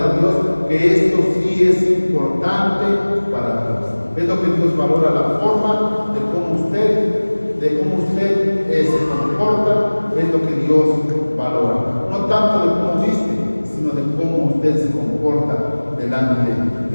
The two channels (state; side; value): inverted; both; correlation -1.00